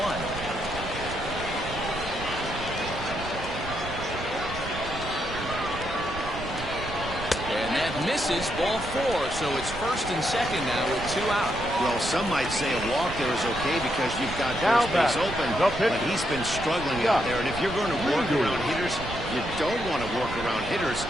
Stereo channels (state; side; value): noise; right; rumble, 10 dB below the sound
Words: And that misses, ball 4. So it's first and second now with 2 out. Well, some might say a walk there is okay because you've got first base open, but he's been struggling out there. And if you're going to work around hitters, you don't want to work around hitters